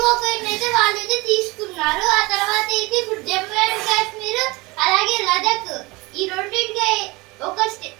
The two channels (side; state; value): left; quieter; 23.8 dB